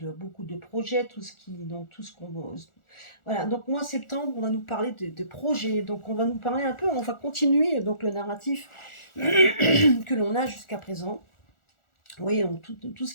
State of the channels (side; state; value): right; late; 1.4 ms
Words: beaucoup de projets, tout ce qu'on... Voilà, donc mois septembre, on va nous parler de projets. Donc on va nous parler un peu, on va continuer donc le narratif que l'on a jusqu'à présent. Oui, donc tout ce